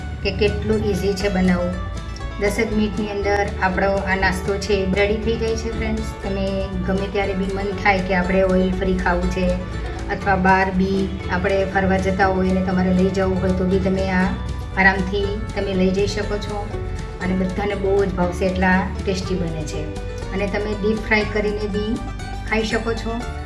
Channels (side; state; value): both; identical; correlation 1.00